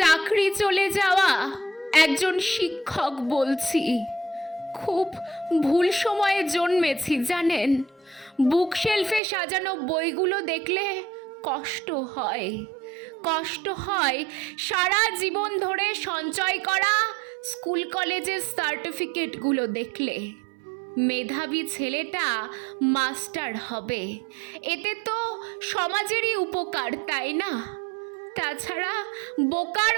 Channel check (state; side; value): drops out; left; at 9.2 s